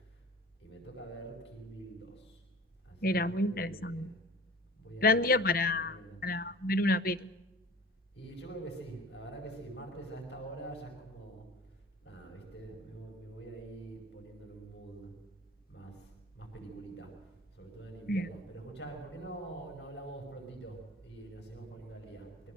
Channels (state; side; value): normal; both; correlation 0.41